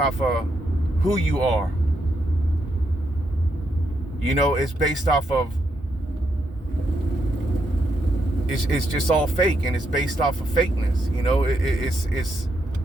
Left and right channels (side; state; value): both; normal; correlation 0.80